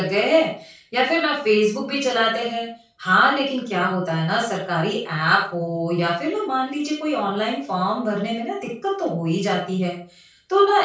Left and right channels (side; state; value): both; identical; correlation 1.00